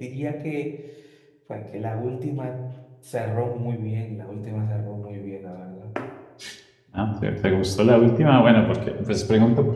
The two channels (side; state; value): both; identical; correlation 1.00